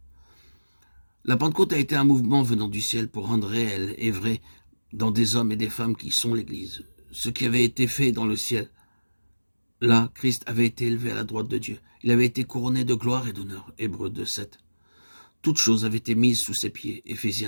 La Pentecôte a été un mouvement venant du ciel pour rendre réel et vrai dans des hommes et des femmes qui sont l'Église ce qui avait été fait dans le ciel. Là, Christ avait été élevé à la droite de Dieu. Il avait été couronné de gloire et d'honneur. Hébreux 2, 7. Toutes choses avaient été mises sous ses pieds.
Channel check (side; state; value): both; inverted; correlation -1.00